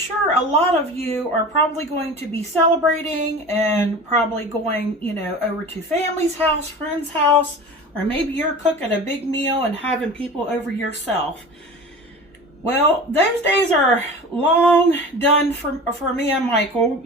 a lot of you are probably going to be celebrating and probably going, over to family's house, friend's house, or maybe you're cooking a big meal and having people over yourself. Well, those days are long done for me and Michael,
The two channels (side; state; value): both; normal; correlation 0.35